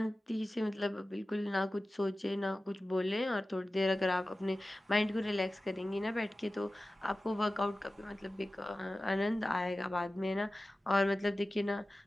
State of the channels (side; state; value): both; normal; correlation 0.96